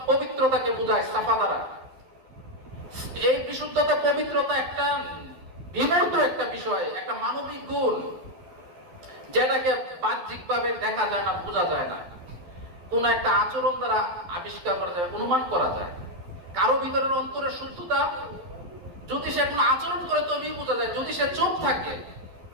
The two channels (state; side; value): late; left; 11 ms